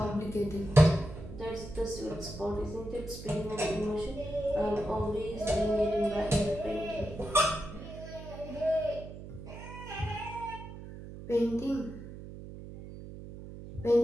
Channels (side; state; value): right; noise; hum, 12 dB below the sound